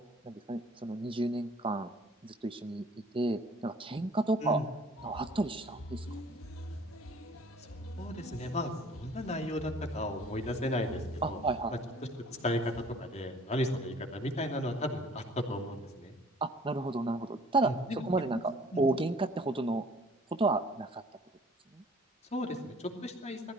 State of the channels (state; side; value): normal; both; correlation 0.53